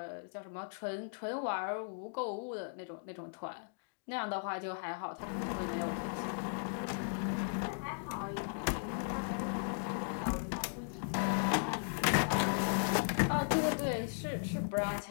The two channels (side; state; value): right; silent; digital silence